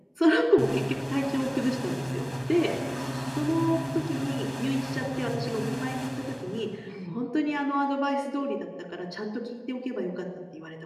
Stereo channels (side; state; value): both; identical; correlation 1.00